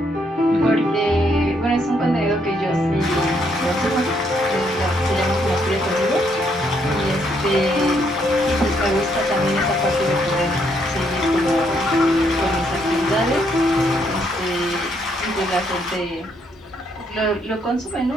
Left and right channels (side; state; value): both; normal; correlation 0.73